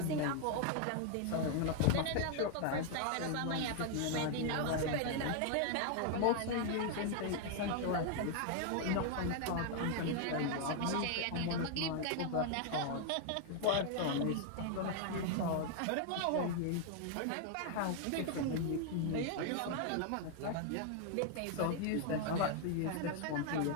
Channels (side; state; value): both; different; correlation 0.00